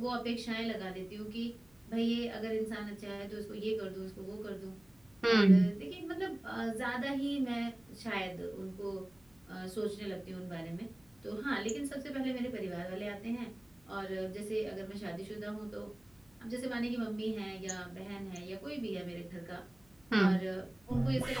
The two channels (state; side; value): noise; left; hum, 29 dB below the sound